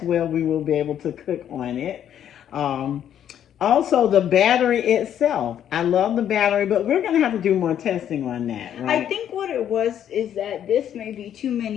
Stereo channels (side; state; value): right; quieter; 10.0 dB